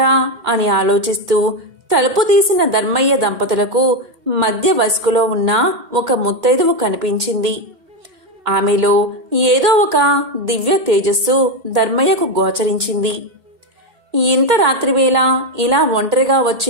అని ఆలోచిస్తూ తలుపు తీసిన ధర్మయ్య దంపతులకు మధ్య వయస్కులో ఉన్న ఒక ముత్తైదువు కనిపించింది. ఆమెలో ఏదో ఒక దివ్య తేజస్సు ధర్మయ్యకు గోచరించింది. ఇంత రాత్రివేళ ఇలా ఒంటరిగా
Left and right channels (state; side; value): late; left; 2.2 ms